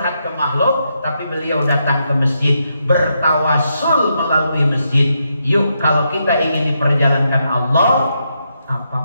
ke makhluk, tapi beliau datang ke masjid, bertawasul melalui masjid. Yuk, kalau kita ingin diperjalankan Allah,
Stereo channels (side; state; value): both; inverted; correlation -0.81